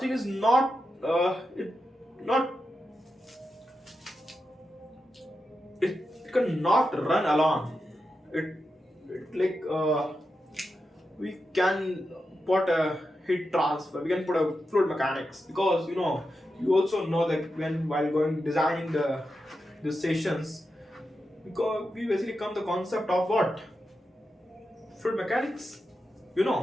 is not not it cannot run alone. It like we can put a heat transfer, we can put a fluid mechanics, because you also know that when while going designing the sessions, because we basically come the concept of what fluid mechanics.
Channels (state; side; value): normal; both; correlation 0.89